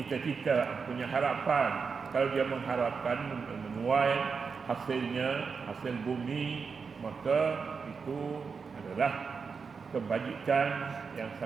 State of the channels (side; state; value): left; quieter; 5.4 dB